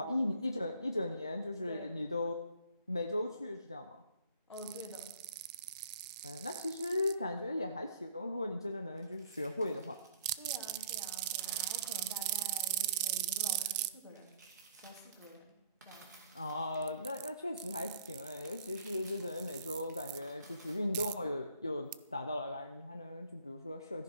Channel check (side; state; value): both; inverted; correlation -0.60